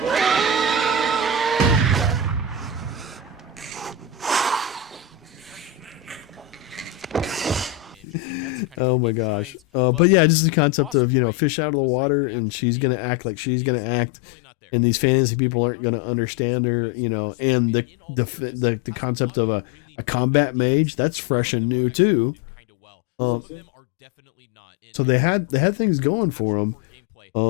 Oh my gosh. But yeah, just the concept of, you know, fish out of the water, and she's going to act like she's going to act, and these fantasy people aren't going to understand her, you know, and the concept of a combat mage, that's fresh and new too. Yeah, that looks it looks interesting. So they had things going for them.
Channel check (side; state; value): right; drops out; at 11.0 s